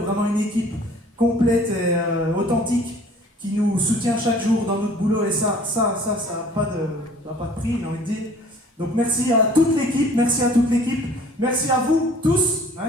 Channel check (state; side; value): normal; both; correlation 0.51